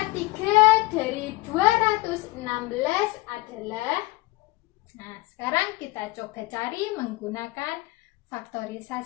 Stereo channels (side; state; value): right; quieter; 21.1 dB